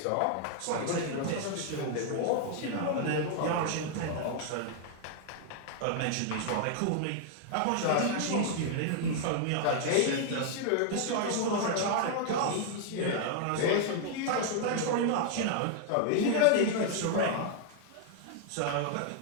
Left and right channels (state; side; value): different; both; correlation 0.00